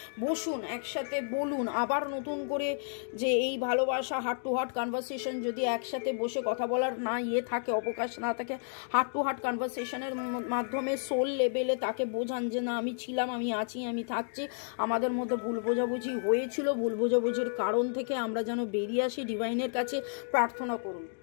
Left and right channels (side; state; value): right; silent; digital silence